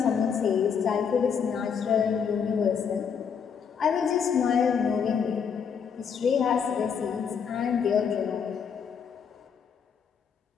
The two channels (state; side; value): quieter; right; 6.8 dB